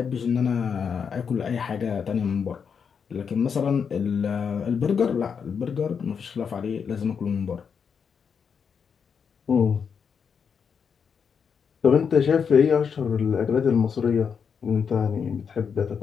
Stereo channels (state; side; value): quieter; right; 6.6 dB